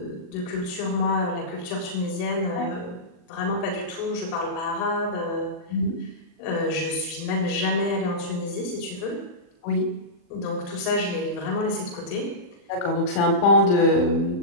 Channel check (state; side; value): late; right; 40 ms